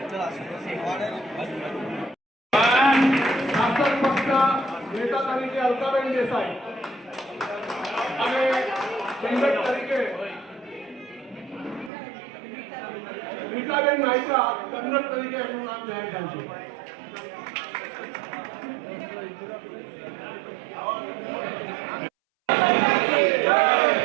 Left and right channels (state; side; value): drops out; left; at 11.9 s